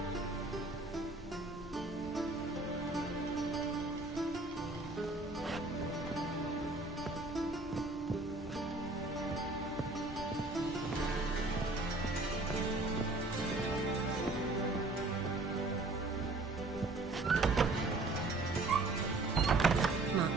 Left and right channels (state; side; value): quieter; left; 3.1 dB